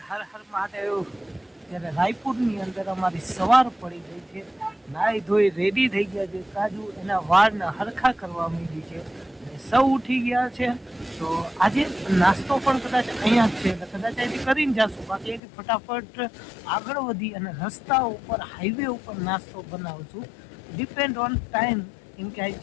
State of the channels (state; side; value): drops out; right; at 15.4 s